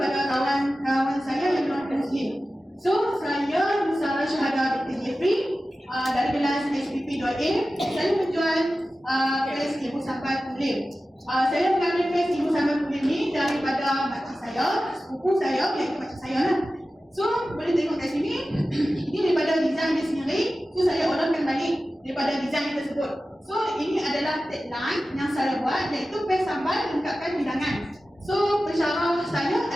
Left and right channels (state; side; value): normal; both; correlation 0.95